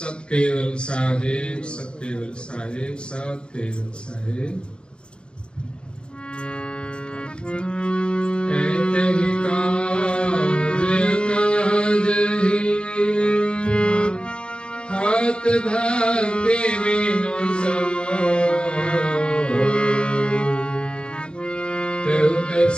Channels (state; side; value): late; right; 0.053 ms